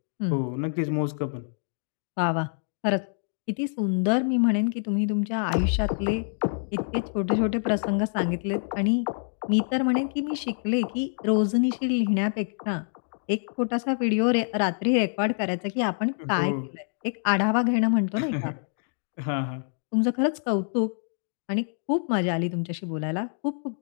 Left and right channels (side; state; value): right; silent; digital silence